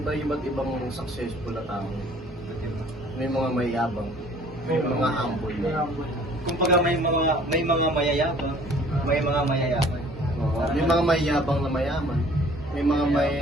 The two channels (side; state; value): both; normal; correlation 0.53